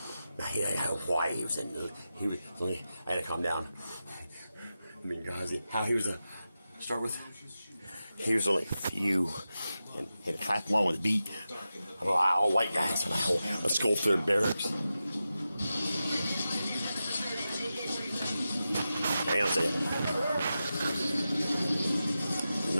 Now, he had Hawaii. I had to calm down. I mean, guys, how he was start with. He was only a few, and had to clap along with the beat. All white guys on a skull through barracks. Hang on a second.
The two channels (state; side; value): inverted; both; correlation -0.91